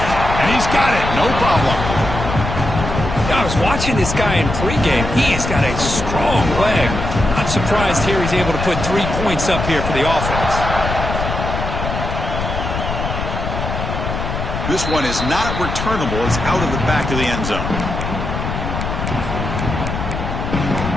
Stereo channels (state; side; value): noise; left; rumble, 4 dB below the sound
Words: And he's got it, no problem. I was watching this guy in pregame. He has got a strong leg. Not surprised here he's able to put 3 points up here for the offense. This one is not returnable. It's out of the back of the end zone.